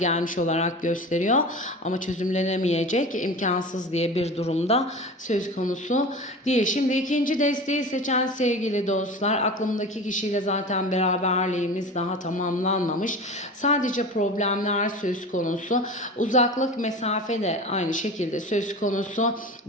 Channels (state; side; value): normal; both; correlation 0.33